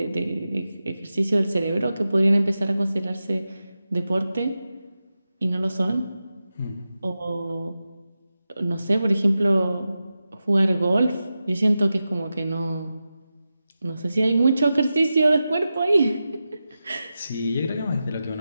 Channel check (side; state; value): both; inverted; correlation -0.92